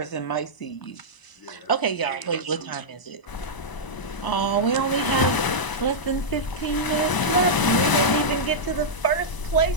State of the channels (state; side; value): late; right; 1.0 ms